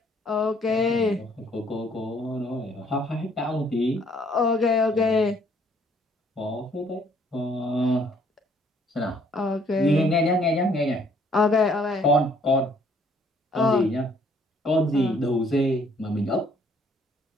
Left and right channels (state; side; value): normal; both; correlation 0.63